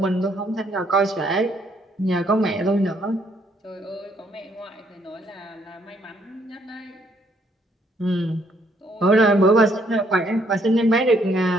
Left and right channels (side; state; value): both; normal; correlation 0.69